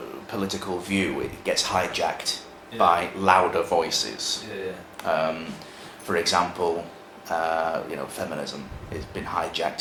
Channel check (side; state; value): both; identical; correlation 1.00